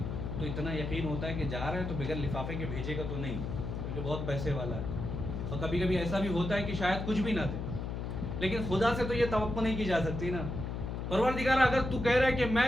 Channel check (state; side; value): noise; left; hum, 4 dB below the sound